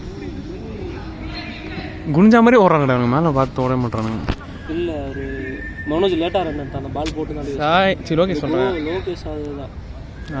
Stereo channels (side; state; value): both; identical; correlation 1.00